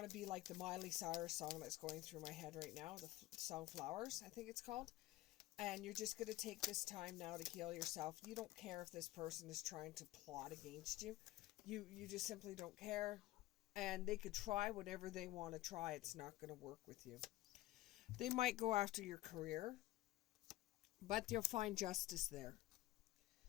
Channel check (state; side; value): quieter; right; 16.9 dB